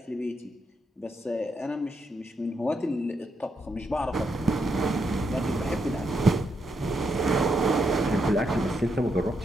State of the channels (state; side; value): normal; both; correlation 0.80